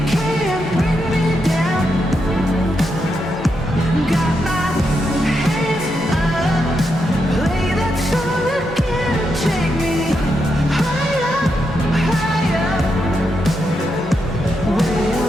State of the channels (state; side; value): normal; both; correlation 0.83